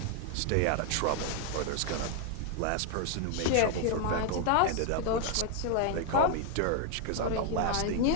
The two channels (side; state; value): both; different; correlation 0.00